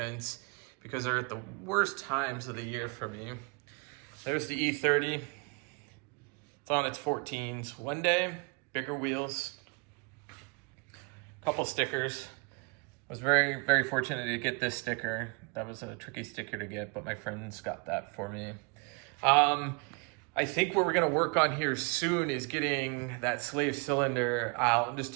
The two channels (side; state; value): left; quieter; 32.1 dB